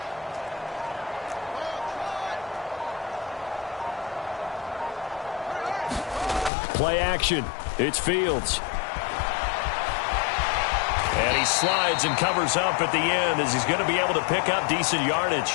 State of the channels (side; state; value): right; drops out; at 6.5 s